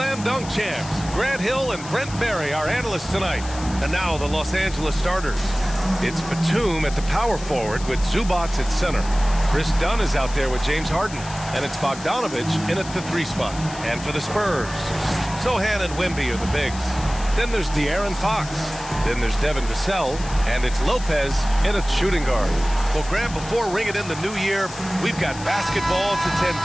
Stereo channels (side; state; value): left; noise; hiss, 14 dB below the sound